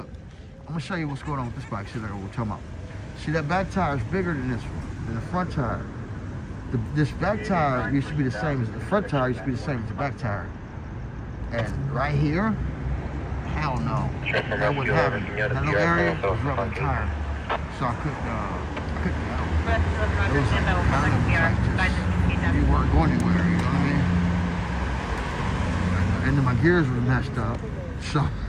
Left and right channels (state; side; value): identical; both; correlation 1.00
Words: I'm gonna show you what's going on with this bike, see what we're talking about. See, that back tire is bigger than this one, than the front tire. This back tire used to be the same as the front tire, used to be the same as the back tire. And right here, hell no, that wouldn't happen. That little area was rubbing the tire, so I couldn't you weren't going anywhere, you know what I mean? And then my gears were messed up, so